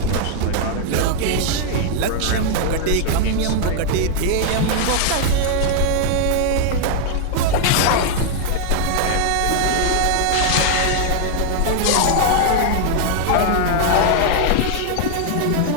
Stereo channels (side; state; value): both; different; correlation 0.00